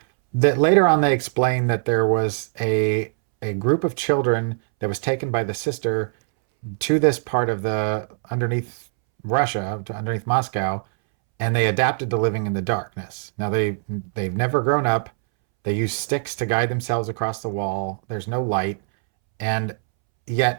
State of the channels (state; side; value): silent; left; 64 dB below the other